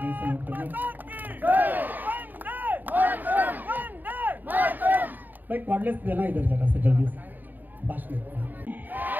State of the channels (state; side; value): late; left; 0.088 ms